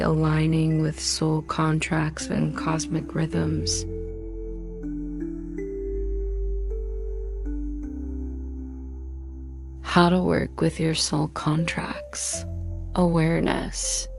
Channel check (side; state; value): both; identical; correlation 1.00